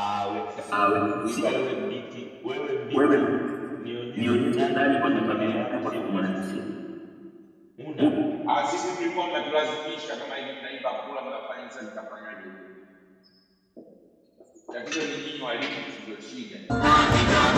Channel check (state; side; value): identical; both; correlation 1.00